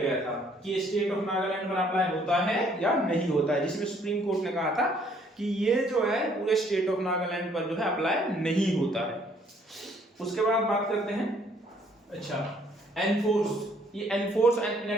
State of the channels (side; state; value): both; normal; correlation 0.63